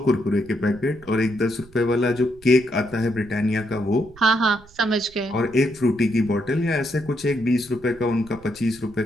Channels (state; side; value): noise; right; rumble, 24 dB below the sound